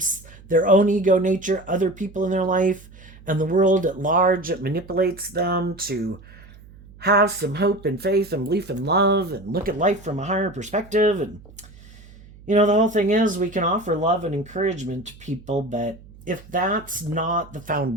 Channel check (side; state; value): right; noise; hum, 21 dB below the sound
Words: their own ego nature, other people in their life, and the world at large. It manipulates them to have some hope and faith and belief and love and look at life from a higher perspective. And, the whole thing is we can offer love and encouragement to people, but if that's not the